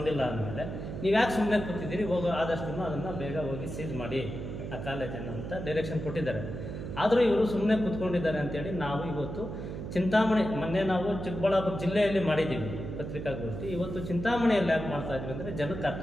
ಅಂದಮೇಲೆ ನೀವು ಯಾಕೆ ಸುಮ್ಮನೆ ಕೂತಿದ್ದೀರಿ, ಹೋಗೋ ಆದಷ್ಟು ಅದನ್ನು ಬೇಗ ಹೋಗಿ ಸೀಜ್ ಮಾಡಿ ಆ ಕಾಲೇಜನ್ನು ಅಂತ ಡೈರೆಕ್ಷನ್ ಕೊಟ್ಟಿದ್ದಾರೆ. ಆದರೂ ಇವರು ಸುಮ್ಮನೆ ಕೂತ್ಕೊಂಡಿದ್ದಾರೆ ಅಂತೇಳಿ ನಾವು ಇವತ್ತು ಚಿಂತಾಮಣಿ, ಮೊನ್ನೆ ನಾವು ಚಿಕ್ಕಬಳ್ಳಾಪುರ ಜಿಲ್ಲೆಯಲ್ಲಿ ಮಾಡಿದ್ದೀವಿ ಪತ್ರಿಕಾಗೋಷ್ಠಿ, ಇವತ್ತು ಚಿಂತಾಮಣಿಯಲ್ಲಿ ಯಾಕೆ ಮಾಡ್ತಾ ಇದ್ವಿ ಅಂದರೆ ಜನಕ್ಕೆ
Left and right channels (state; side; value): noise; right; hum, 7 dB below the sound